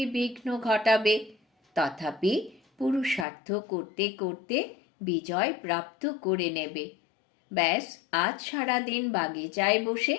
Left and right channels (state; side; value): drops out; right; at 3.2 s